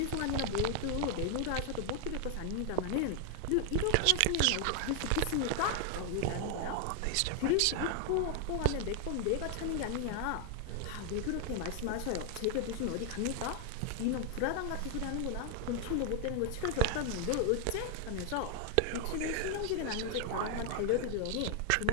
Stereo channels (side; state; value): both; different; correlation 0.00